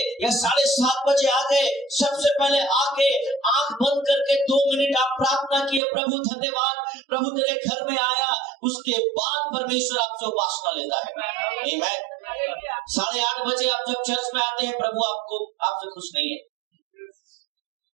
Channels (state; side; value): drops out; left; at 5.8 s